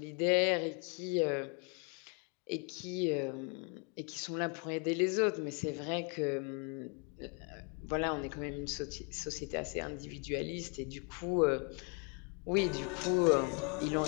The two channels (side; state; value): right; quieter; 36.8 dB